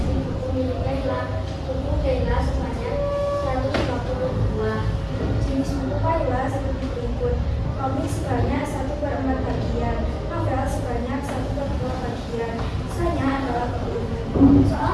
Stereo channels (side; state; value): both; identical; correlation 1.00